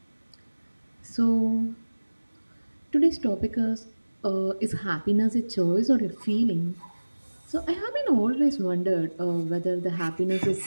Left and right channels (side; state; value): both; inverted; correlation -1.00